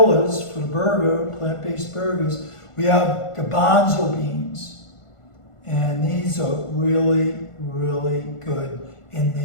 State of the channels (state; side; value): late; right; 1.5 ms